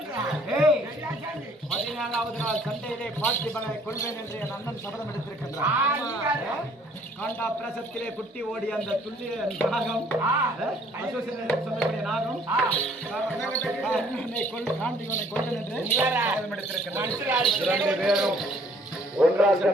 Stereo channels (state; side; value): normal; both; correlation 0.60